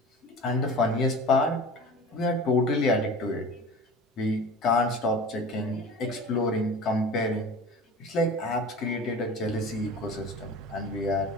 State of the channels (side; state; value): both; normal; correlation 0.37